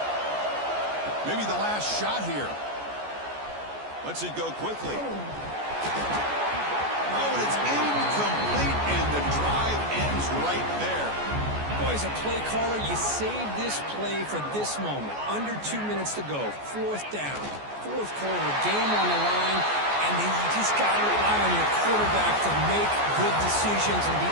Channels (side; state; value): left; late; 14 ms